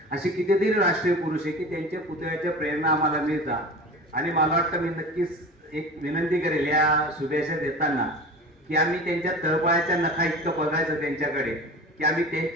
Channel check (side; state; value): both; normal; correlation 0.35